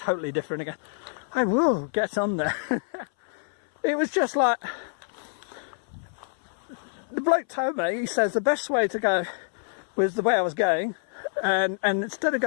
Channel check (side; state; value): right; silent; 58 dB below the other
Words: different again. I will get on there. It was just like, the bloke told me, he says the best way to go was the way I was going, and instead